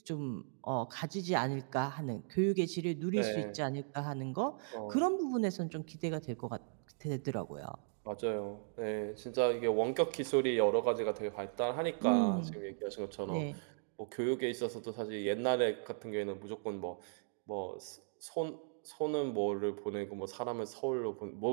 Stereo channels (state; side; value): silent; left; digital silence